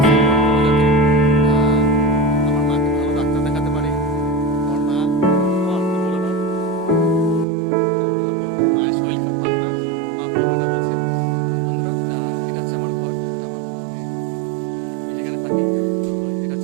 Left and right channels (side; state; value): left; drops out; at 7.5 s